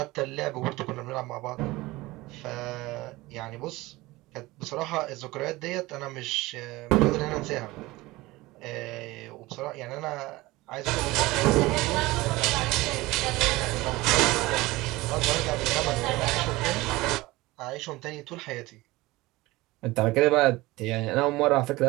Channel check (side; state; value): left; quieter; 20.0 dB